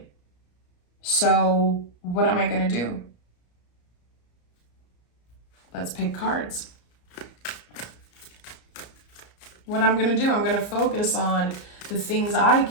So what am I going to do? Let's pick cards. What I'm going to do, I'm going to focus on the things I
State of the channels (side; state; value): right; late; 34 ms